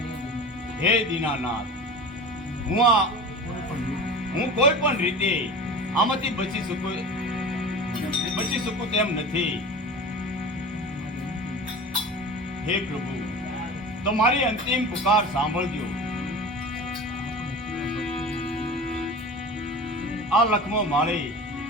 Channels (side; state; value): both; normal; correlation 0.34